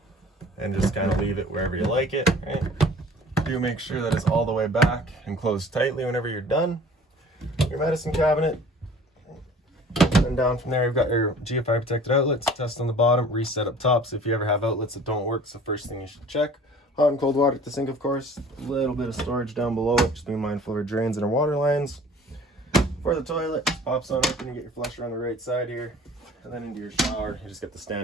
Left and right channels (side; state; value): both; normal; correlation 0.48